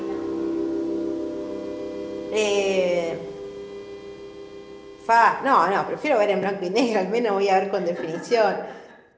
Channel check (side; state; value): both; identical; correlation 1.00